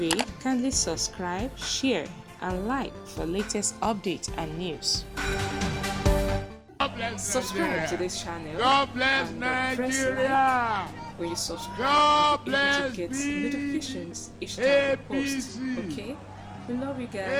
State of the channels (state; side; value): identical; both; correlation 1.00